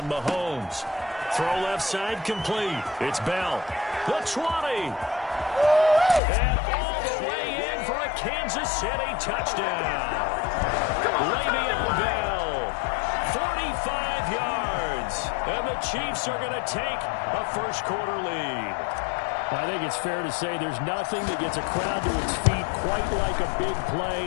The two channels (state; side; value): drops out; right; at 6.2 s